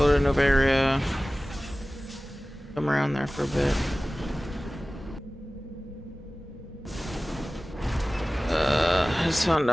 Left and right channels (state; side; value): normal; both; correlation 0.97